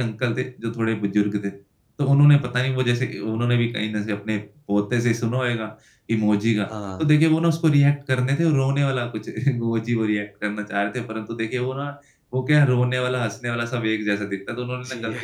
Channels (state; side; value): identical; both; correlation 1.00